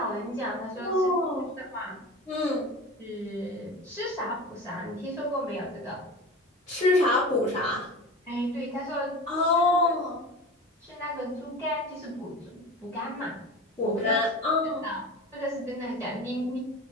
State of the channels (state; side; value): normal; both; correlation 0.32